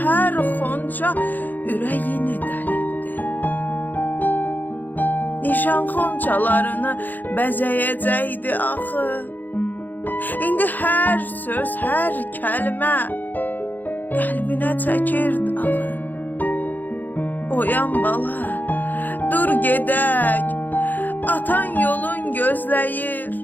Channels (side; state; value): right; late; 0.089 ms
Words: hər xonca ürəyini dəlibdi. Nişan xonçalarını bəzəyəcəkdi axı. İndi hər söz, hər kəlmə qəlbinə çəkirdi ağı. Oyan bala, dur gedək, atan yolun gözləyir.